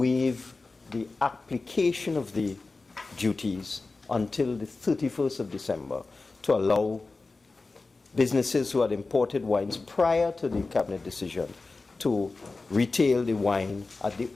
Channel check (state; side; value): quieter; right; 3.7 dB